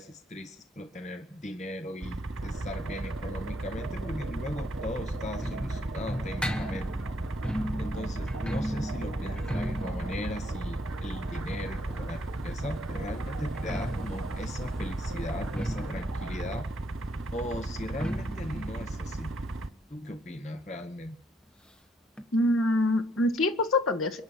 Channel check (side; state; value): both; normal; correlation 0.70